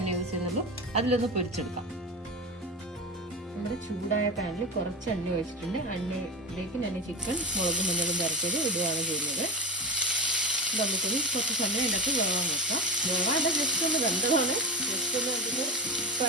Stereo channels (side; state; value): both; normal; correlation 0.25